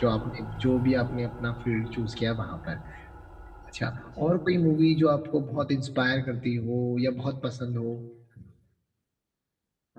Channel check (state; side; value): identical; both; correlation 1.00